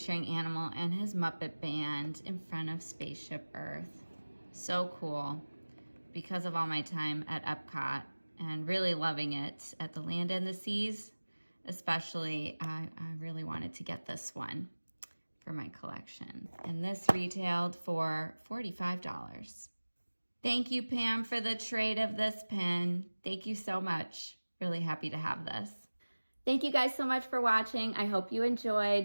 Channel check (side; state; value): both; inverted; correlation -1.00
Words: Animal and his Muppet Band in front of Spaceship Earth. So cool. Because of all my time at Epcot and really loving it at the Land and the Seas, especially, I really wanted to get this one for my collection. And this retailed for $45. Thank you, Pam, for the trade of this pin. Thank you so much. Really happy to have this. Thank you guys so much for watching. I hope you